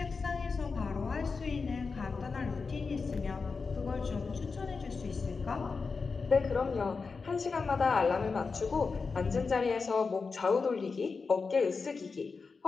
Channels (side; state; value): right; quieter; 4.7 dB